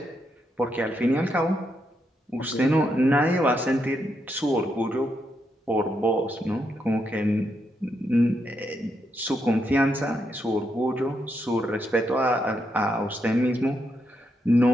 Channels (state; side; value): normal; both; correlation 0.81